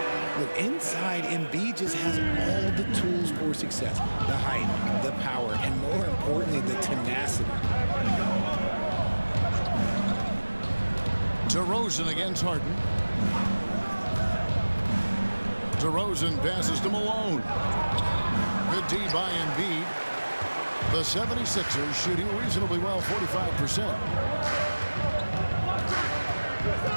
Look, inside, Embiid just has all the tools for success. The height, the power, and more importantly, the tenacity. DeRozan against Harden. DeRozan passes to Malone. Good D by Embiid. The 76ers shooting reasonably well, 45%.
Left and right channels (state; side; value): inverted; both; correlation -1.00